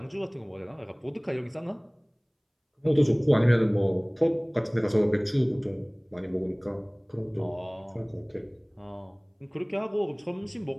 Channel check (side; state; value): both; identical; correlation 1.00